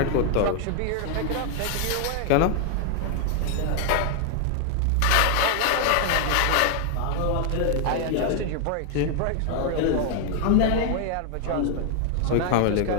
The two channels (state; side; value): different; both; correlation 0.00